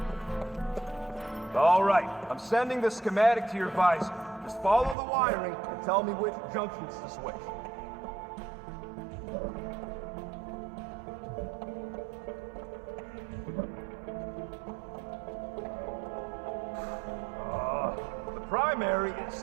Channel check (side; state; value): left; drops out; at 5.0 s